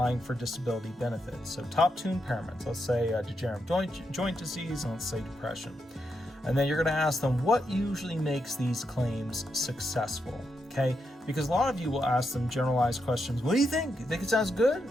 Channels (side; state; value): both; normal; correlation 0.83